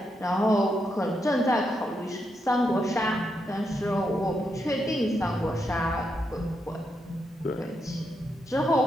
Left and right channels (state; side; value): normal; both; correlation 0.82